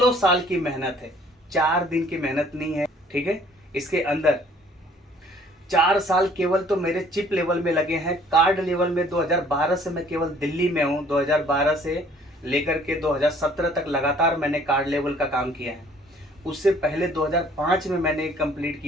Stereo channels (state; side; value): normal; both; correlation 0.57